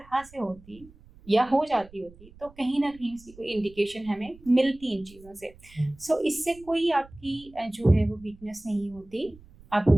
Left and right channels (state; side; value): noise; right; rumble, 23 dB below the sound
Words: से होती या हो जाती होती तो कहीं ना कहीं उसकी कोई इंडिकेशन हमें मिलती इन चीज़ों से। सो इससे कोई आपकी जो है वो वीकनेस नहीं होती। आप